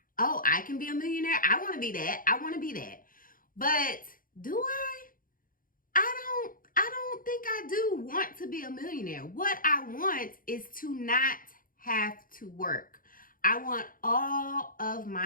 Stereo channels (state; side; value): late; right; 0.40 ms